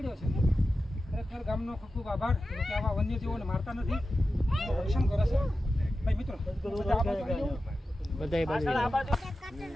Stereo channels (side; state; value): both; normal; correlation 0.92